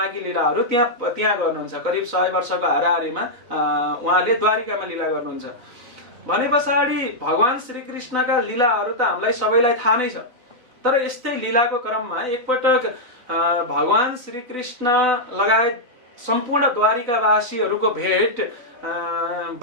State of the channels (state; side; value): late; left; 3.9 ms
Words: लीलाहरू त्यहाँ गर्नुहुन्छ। करिब 100 वर्षको हाराहारीमा उहाँले द्वारिकामा लीला गर्नुहुन्छ। भने पछाडि भगवान श्री कृष्णका लीलाहरू त हामीलाई सबैलाई थाहा नै छ, तर यस्तै लीलाको क्रममा एकपटक भगवान श्री कृष्ण लगायत सम्पूर्ण द्वारिकावासीहरूको भेट